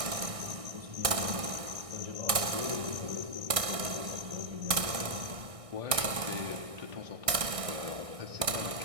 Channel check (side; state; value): left; late; 1.6 ms